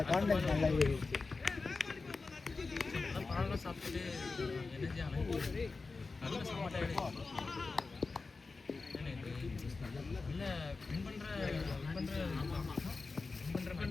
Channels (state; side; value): quieter; right; 4.0 dB